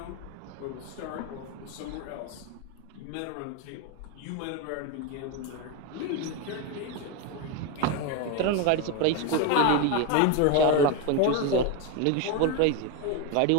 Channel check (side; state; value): both; different; correlation 0.03